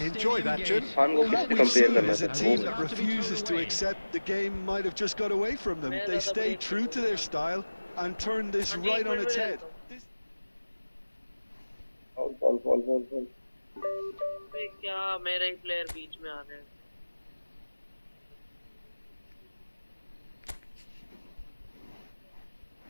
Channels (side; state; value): both; inverted; correlation -1.00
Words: Enjoy that, Jim. Khan को What किससे we've कंपेयर seen करना is a था team that refuses to accept the game might have just got away from them. They stay true to their style and turn this right on its head. Ball क्या मेरे ही player बीच में आ रहे हैं।